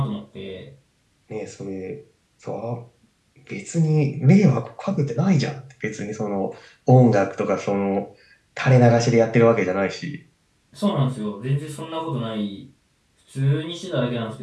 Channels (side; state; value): both; identical; correlation 1.00